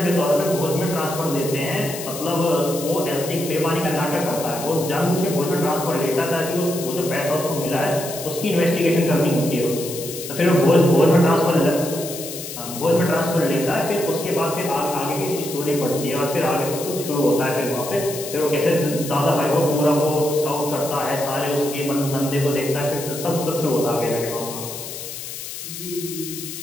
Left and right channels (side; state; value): left; noise; hiss, 9 dB below the sound